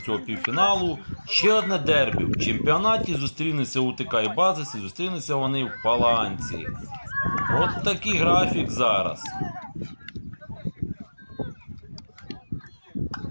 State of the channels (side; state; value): both; inverted; correlation -1.00